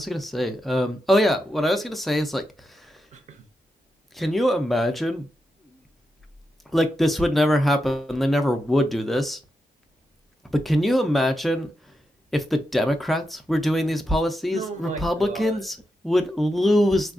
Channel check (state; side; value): normal; both; correlation 0.87